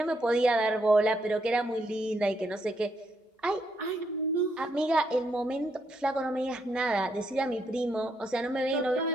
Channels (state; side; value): normal; both; correlation 0.76